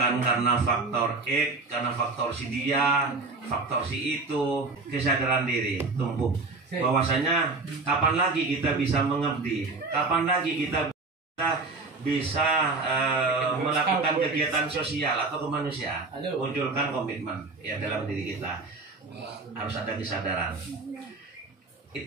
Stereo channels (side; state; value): left; quieter; 3.7 dB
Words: karena faktor X, karena faktor si dia, faktor si itu, kesadaran diri tumbuh. Bahwasanya kapan lagi kita bisa mengabdi, kapan lagi kita bisa melakukan kegiatan sosial atau kemanusiaan. Munculkan komitmen, ya, dalam diri kita. Harus ada kesadaran.